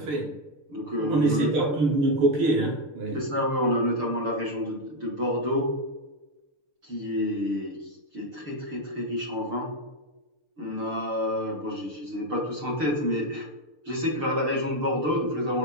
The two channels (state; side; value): late; left; 6.7 ms